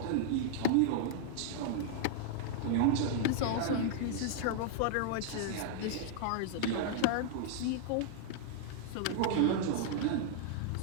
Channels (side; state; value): both; different; correlation -0.01